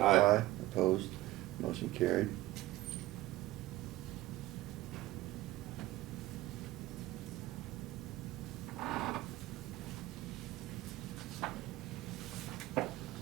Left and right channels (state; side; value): quieter; left; 16.8 dB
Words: Aye. Opposed? Motion carried.